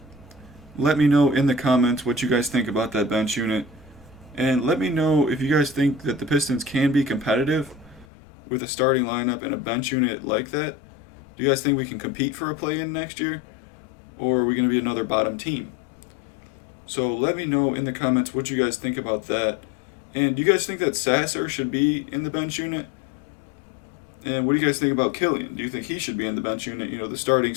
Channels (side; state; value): right; drops out; at 8.1 s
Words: Let me know in the comments what you guys think about that bench unit. And let me know if you guys think that the Pistons can be competitive with a starting lineup and a bench unit like that. Do you guys think we can compete for a play-in next year? Or are we going to be another bottom team? So let me know in the comments what you guys think about that. And do you guys think that Sasser should be in the bench unit? And what do you guys think about Killian? Do you think he should be in the bench unit? You know, the starting